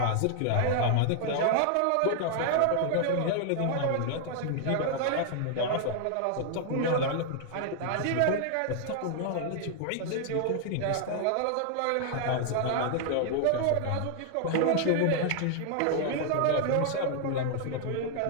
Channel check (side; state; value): both; different; correlation 0.00